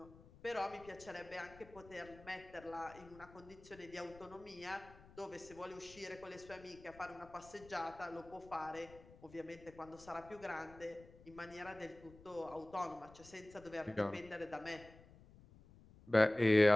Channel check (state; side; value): noise; left; rumble, 21 dB below the sound